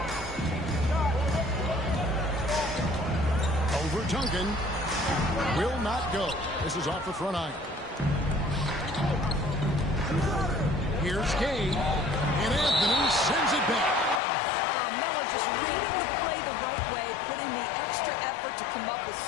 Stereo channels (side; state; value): right; drops out; at 14.2 s